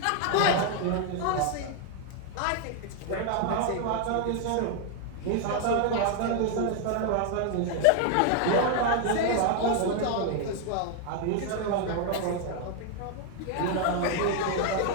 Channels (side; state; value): both; different; correlation 0.00